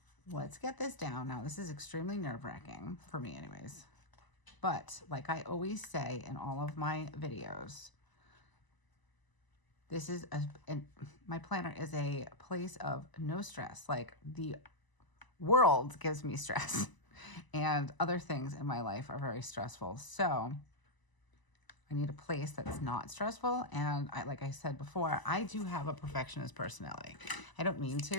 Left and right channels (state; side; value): late; right; 1.0 ms